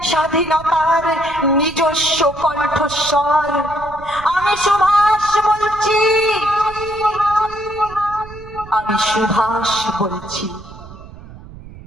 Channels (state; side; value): noise; right; rumble, 17 dB below the sound